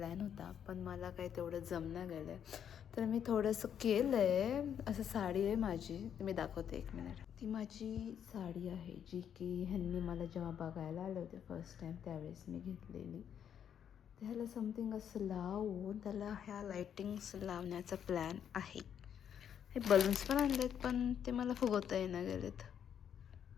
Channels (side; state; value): right; quieter; 8.8 dB